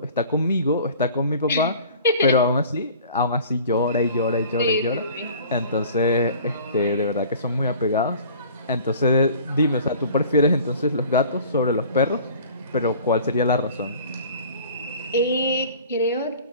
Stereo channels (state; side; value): inverted; both; correlation -0.47